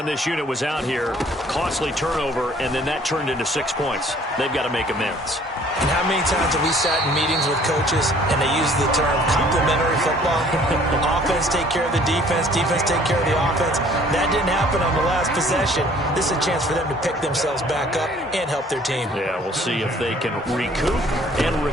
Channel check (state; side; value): normal; both; correlation 0.56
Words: this unit was out here, costly turnover, and then that turned into 6 points. They've got to make amends. And how many times have we sat in meetings with coaches and they use the term complementary football? Offense take care of the defense, defense take care of the offense. That didn't happen on the last possession. This is a chance for them to pick themselves back up and help their team. Yeah, we'll see if they can recoup and